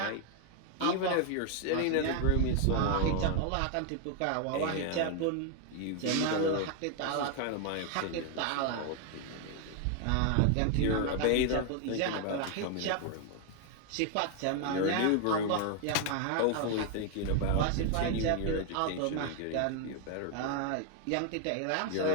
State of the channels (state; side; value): different; both; correlation 0.01